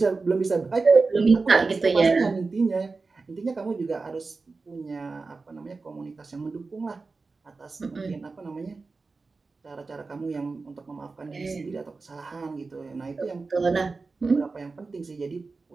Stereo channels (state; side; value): quieter; left; 4.0 dB